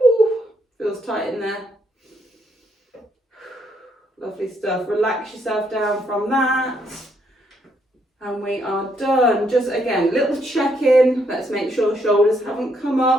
feels tight in there. Lovely stuff. Relax yourself down from that. And we are done. Just again, little check-in. Let's make sure the shoulders haven't come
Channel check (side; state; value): both; normal; correlation 0.74